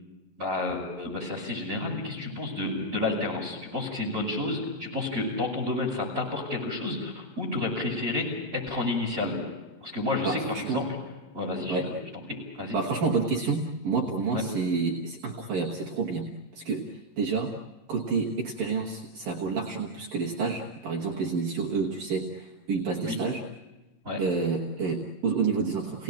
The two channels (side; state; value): left; late; 11 ms